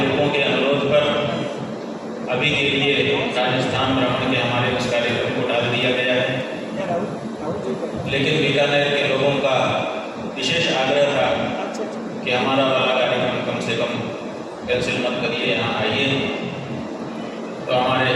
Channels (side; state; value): both; identical; correlation 1.00